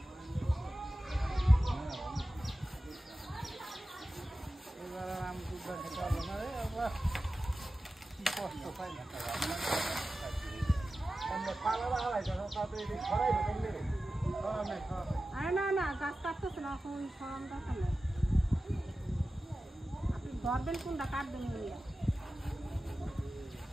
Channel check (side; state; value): both; normal; correlation 0.94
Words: এবার আমি দুধ খেতে হবে না রে আবার কি কষ্ট পাই না আমরা পালা হারাই যখন তাতে ছড়াই কেমনে রে আরে না গাছ কাটতেছে না এখন সরম দরকার নেই আপনি ধরবেন কোনটা কাটবেন ওইয়া